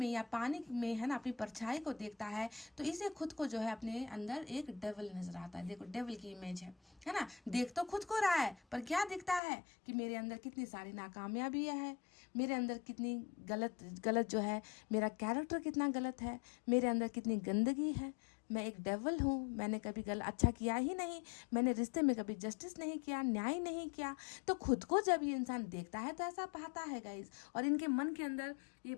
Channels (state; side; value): drops out; right; at 9.4 s